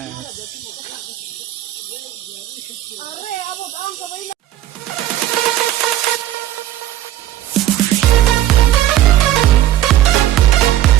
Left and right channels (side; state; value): left; quieter; 13.3 dB